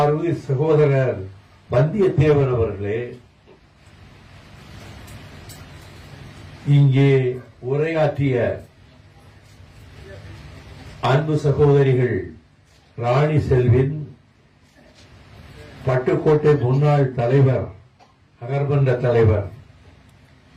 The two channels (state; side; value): identical; both; correlation 1.00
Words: சகோதரர் வந்தியத்தேவன் அவர்களே, இங்கே உரையாற்றிய அன்பு சகோதரிகள் ராணி செல்வின், பட்டுக்கோட்டை முன்னாள் தலைவர் நகர்மன்ற தலைவர்